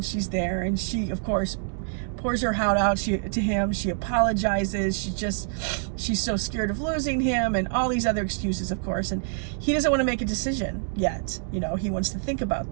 she's there, and she, of course, pours her heart out to him. She apologizes. She's so scared of losing him, and all these other excuses, of course. And he doesn't want to make a decision yet. He wants to think about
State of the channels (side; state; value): left; silent; digital silence